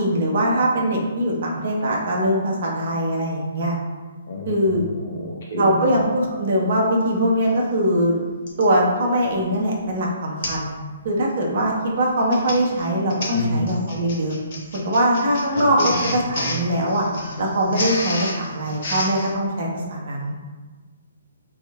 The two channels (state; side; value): inverted; both; correlation -0.61